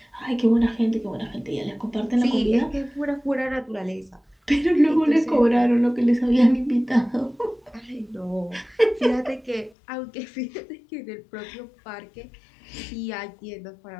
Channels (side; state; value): right; drops out; at 9.8 s